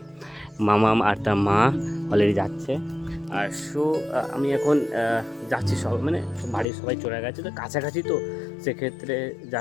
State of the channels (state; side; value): drops out; right; at 6.7 s